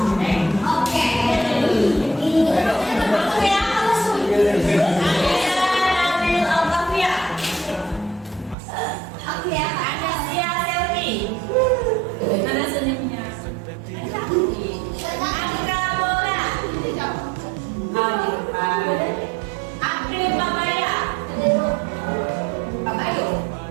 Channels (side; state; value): left; drops out; at 8.6 s